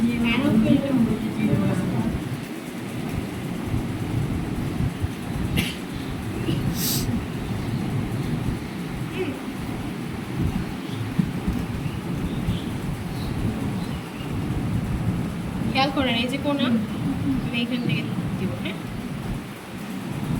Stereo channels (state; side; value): identical; both; correlation 1.00